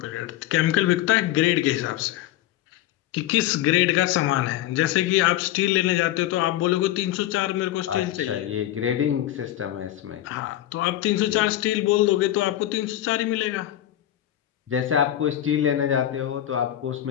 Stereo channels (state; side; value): quieter; right; 13.2 dB